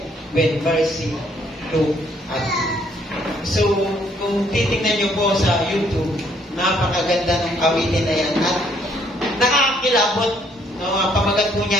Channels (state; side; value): normal; both; correlation 0.66